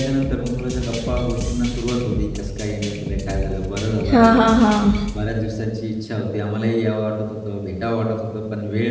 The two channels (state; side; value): identical; both; correlation 1.00